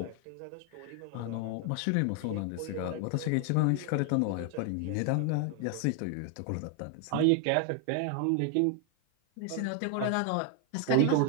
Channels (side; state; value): both; different; correlation 0.00